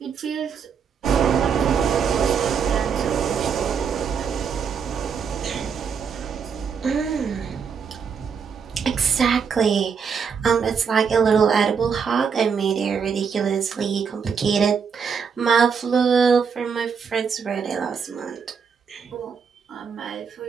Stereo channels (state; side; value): quieter; left; 6.4 dB